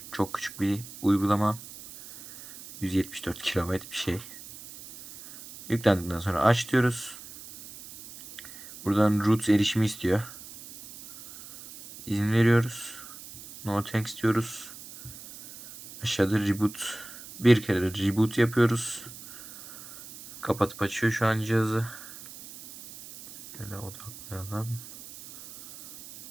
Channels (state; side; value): noise; right; hiss, 16 dB below the sound